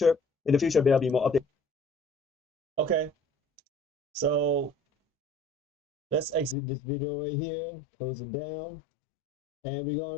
In the future, there'll be more updates. Okay, so let's exit this video right here, close it down, and we're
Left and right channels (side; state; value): right; drops out; at 6.6 s